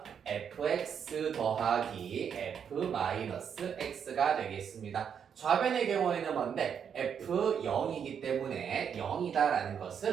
fx 더하기 f 마이너스 x가 되겠습니다. 좌변의 경우에는 뭔데? f0이기 때문에 0이다라는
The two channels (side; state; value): left; quieter; 7.6 dB